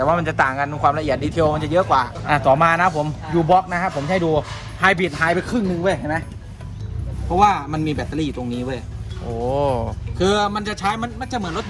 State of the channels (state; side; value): identical; both; correlation 1.00